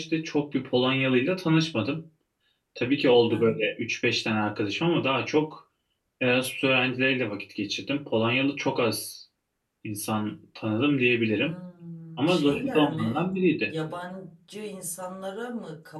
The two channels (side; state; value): both; identical; correlation 1.00